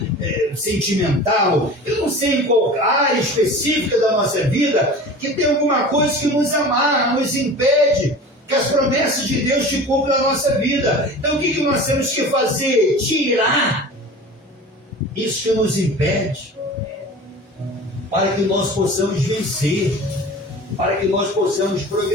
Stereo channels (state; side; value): normal; both; correlation 0.37